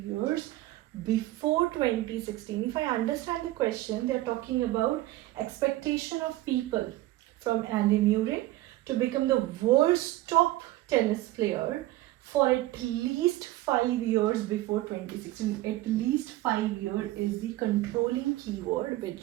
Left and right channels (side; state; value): left; quieter; 16.7 dB